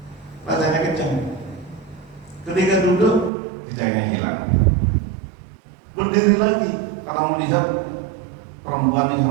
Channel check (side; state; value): left; drops out; at 3.3 s